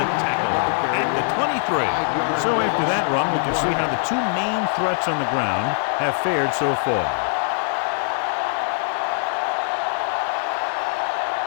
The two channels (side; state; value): right; silent; 62 dB below the other